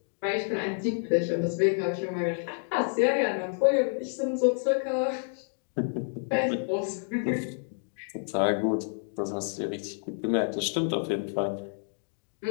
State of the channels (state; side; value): silent; right; digital silence